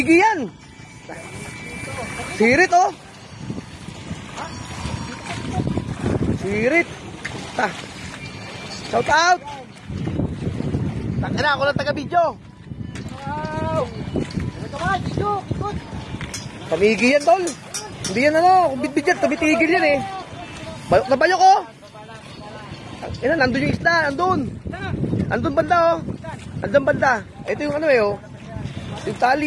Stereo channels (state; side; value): identical; both; correlation 1.00